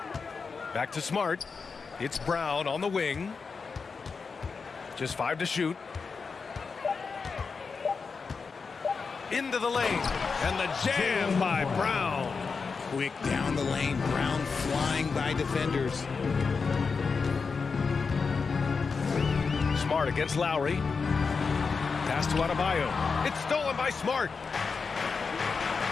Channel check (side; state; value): right; quieter; 5.0 dB